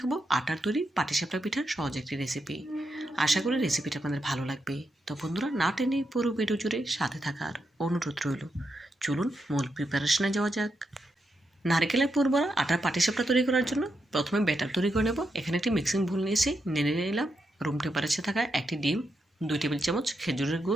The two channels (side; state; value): both; normal; correlation 0.83